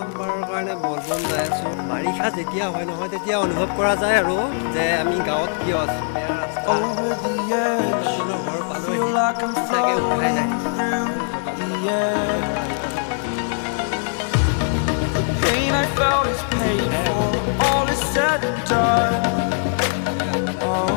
কাৰণে বলবম যাই আছোঁ। বাৰিষা যেতিয়া হয় নহয় তেতিয়া অনুভৱ কৰা যায় আৰু যে আমি গাঁৱত কিয় আছোঁ। বেয়া ৰাস্তা, ঘৰ পালোহি, সঁচাকৈ উঠাই যায়।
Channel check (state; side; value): silent; right; 61 dB below the other